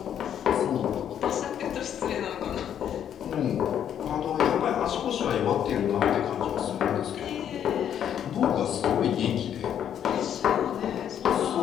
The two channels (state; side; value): quieter; right; 9.5 dB